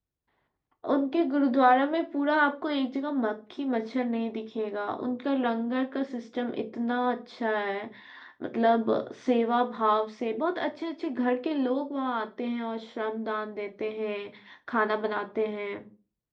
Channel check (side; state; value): both; identical; correlation 1.00